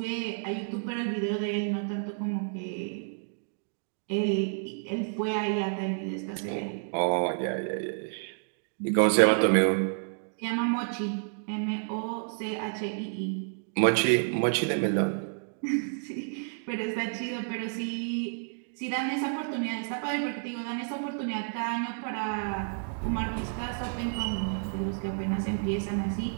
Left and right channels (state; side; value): silent; left; digital silence